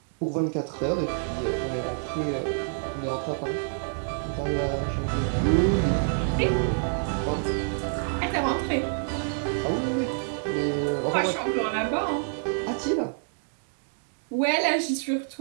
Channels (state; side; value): silent; left; digital silence